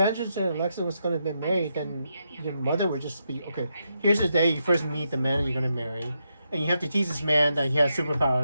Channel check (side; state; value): both; inverted; correlation -0.83